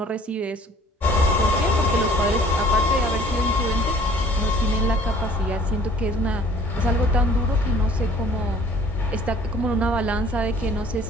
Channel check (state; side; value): normal; both; correlation 0.53